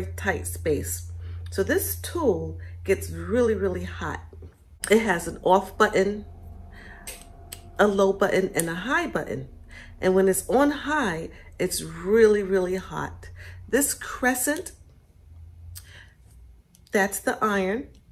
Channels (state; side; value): identical; both; correlation 1.00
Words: tight space. So this tool gets really hot. It has an off button, a low button, and a high button. And when it's on high, it's really hot. This crescent, that's the iron.